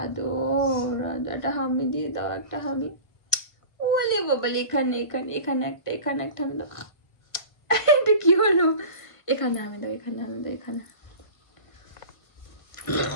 আদর, একটা হামি দিয়ে দাও, একটা হামি। ওলে বাবালে, এখানে এখানে এখানে একটা, এখানে একটা হামি দাও। এটা কি হলো? এখানে হামি দাও, এখানে হামি দাও, এখানে।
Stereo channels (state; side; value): late; right; 1.5 ms